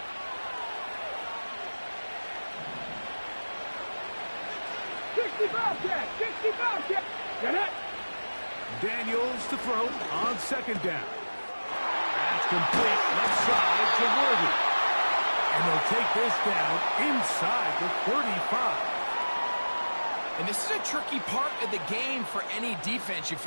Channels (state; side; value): inverted; both; correlation -1.00